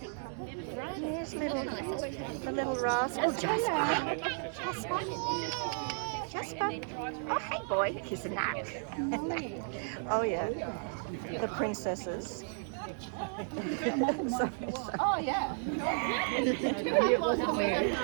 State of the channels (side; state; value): left; silent; 55 dB below the other